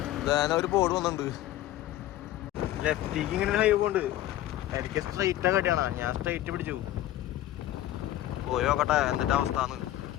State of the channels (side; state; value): right; quieter; 14.0 dB